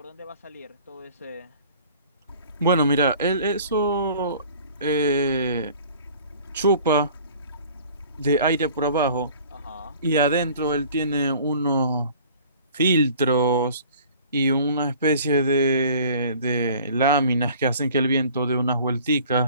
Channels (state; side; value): inverted; both; correlation -0.49